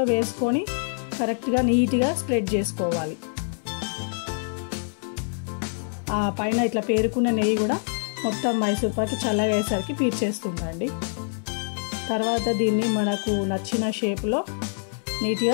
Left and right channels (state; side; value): silent; right; digital silence